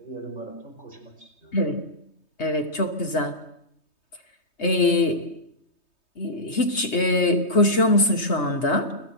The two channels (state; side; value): late; right; 3.2 ms